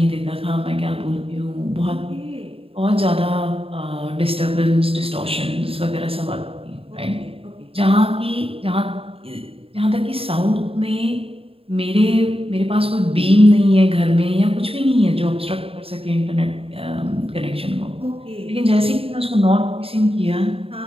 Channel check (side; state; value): left; late; 0.27 ms